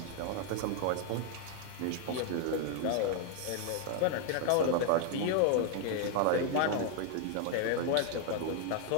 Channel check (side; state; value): both; different; correlation 0.00